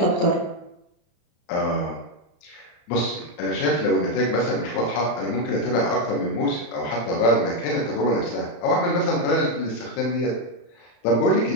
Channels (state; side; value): late; right; 34 ms